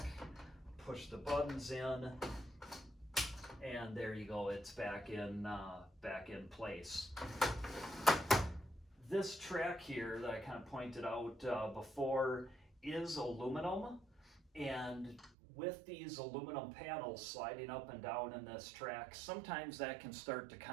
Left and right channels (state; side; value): drops out; left; at 15.3 s